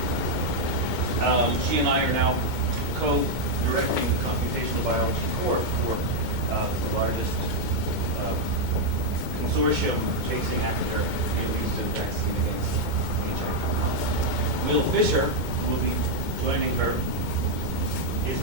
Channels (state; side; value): late; left; 2.2 ms